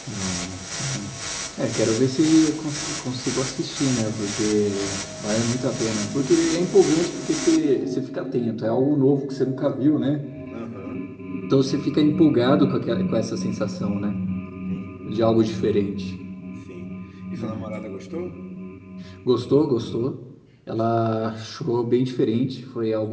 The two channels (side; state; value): both; identical; correlation 1.00